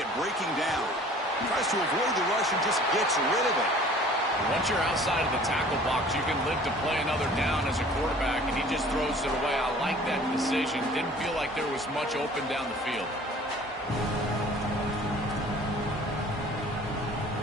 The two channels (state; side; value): normal; both; correlation 0.49